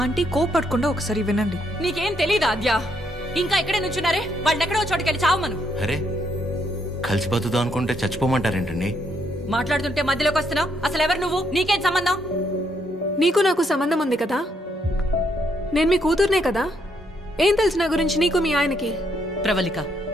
ఆంటీ కోపడకుండా ఒకసారి వినండి. నీకేం తెలీదా అద్యా? ఇంకా ఇక్కడే నుంచున్నారే, వాళ్ళని ఎక్కడో చోటుకెళ్ళి చావమను. అరే కలిసి బతుకుదాం అనుకుంటే చచ్చిపోమంటారేంటండి? మాట్లాడుతుంటే మధ్యలోకి వస్తున్నావు. అసలు ఎవరు నువ్వు? నీకేం సంబంధం? నీకు నాకు సంబంధం ఉంది కదా. నేను మీ కూతుర్నే కదా. ఏం తెలుసు నా గురించి నీకు మీ ఆయనకి? ప్రవళిక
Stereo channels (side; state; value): both; normal; correlation 0.74